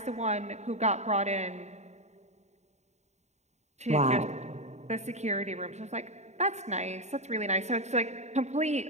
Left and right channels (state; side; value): late; left; 0.33 ms